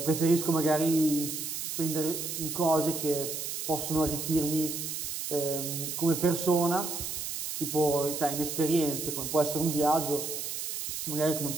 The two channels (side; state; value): right; noise; hiss, 4 dB below the sound